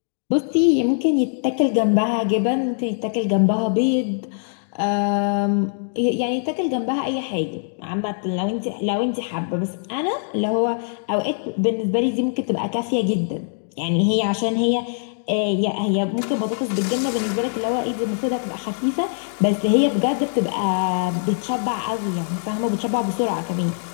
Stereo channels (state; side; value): silent; right; digital silence